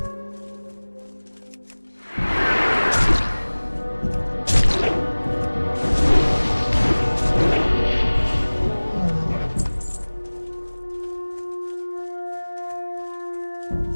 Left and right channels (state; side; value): inverted; both; correlation -1.00